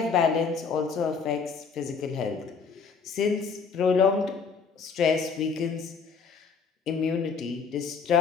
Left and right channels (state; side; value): quieter; right; 5.5 dB